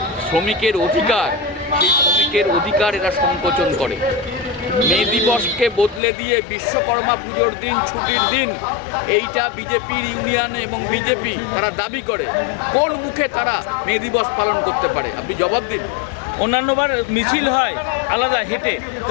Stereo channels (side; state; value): right; drops out; at 6.0 s